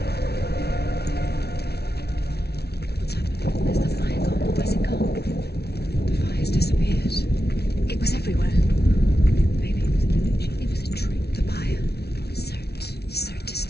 What's happened? Where's the fire gone? Where's it gone? The fire's disappeared. It was everywhere. Maybe it was an illusion. It was a trick. The buyer. Surt is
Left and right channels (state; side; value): late; right; 0.48 ms